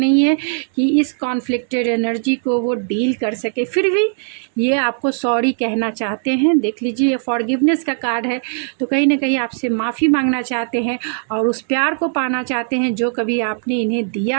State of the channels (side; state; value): left; silent; digital silence